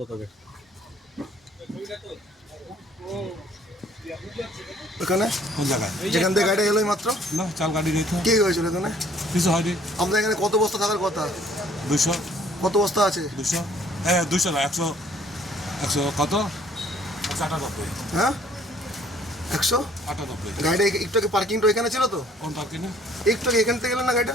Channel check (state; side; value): normal; both; correlation 0.59